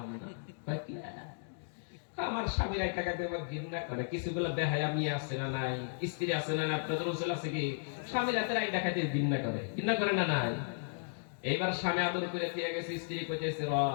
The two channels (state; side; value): silent; right; digital silence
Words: না। আমার স্বামীর আইটা খাইতে আমার ঘৃণা করে। কিছুগুলো বেহায়া মেয়ে আছে না নাই, স্ত্রী আছে না নাই, আপনাদের অঞ্চল আছে কি? স্বামীর হাতের আইটা খাইতে ঘৃণা করে, ঘৃণা করে না নাই? এইবার স্বামী আদর করে থিয়া গেছে, স্ত্রী কইতেছে, র